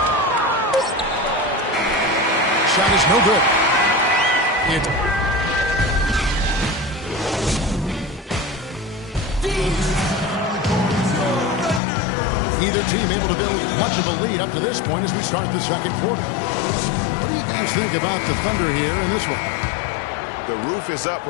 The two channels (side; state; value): right; drops out; at 11.8 s